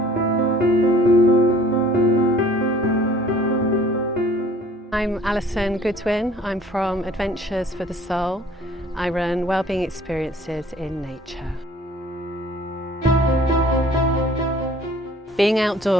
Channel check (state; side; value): normal; both; correlation 0.53